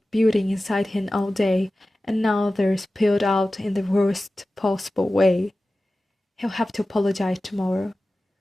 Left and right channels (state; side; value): normal; both; correlation 0.96